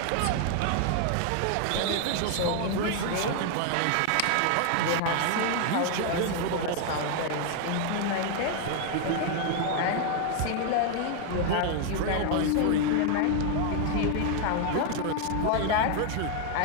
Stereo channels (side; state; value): both; different; correlation 0.00